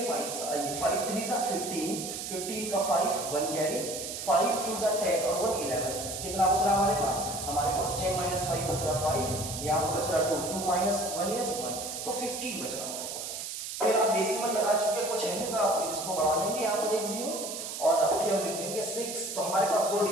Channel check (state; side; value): noise; right; hiss, 6 dB below the sound